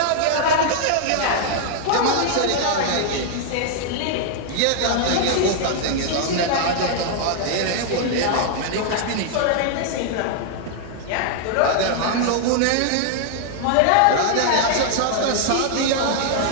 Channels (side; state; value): both; different; correlation 0.00